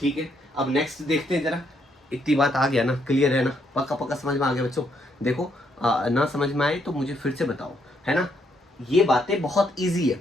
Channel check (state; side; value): normal; both; correlation 0.74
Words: है, अब नेक्स्ट देखते हैं जरा। इतनी बात आ गया ना? क्लियर है ना? पक्का पक्का समझ में आ गया बच्चों? देखो ना समझ में आए तो मुझे फिर से बताओ, है ना? ये बातें बहुत इजी है,